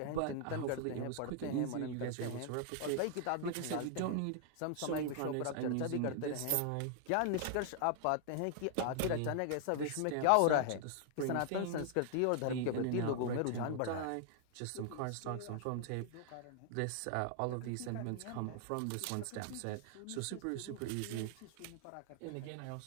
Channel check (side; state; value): both; different; correlation 0.00